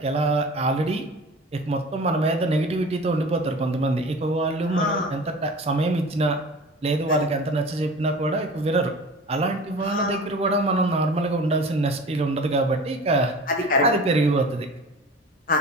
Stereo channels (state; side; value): normal; both; correlation 0.38